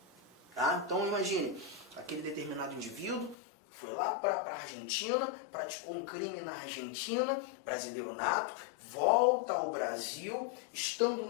Tá? Então imagine, aquele determinado indivíduo foi lá para a Argentina, praticou um crime na Argentina, brasileiro nato, volta ao Brasil, estando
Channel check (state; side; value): drops out; right; at 3.4 s